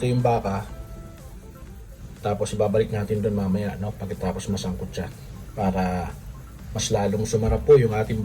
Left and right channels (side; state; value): both; identical; correlation 1.00